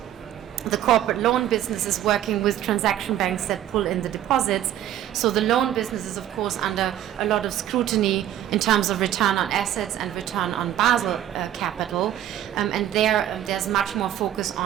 the corporate loan business is working with transaction banks that pull in the deposits. So the loan business is, of course, under a lot of scrutiny in terms of return on assets and return on Basel capital. And there's much more focus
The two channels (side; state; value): left; quieter; 11.8 dB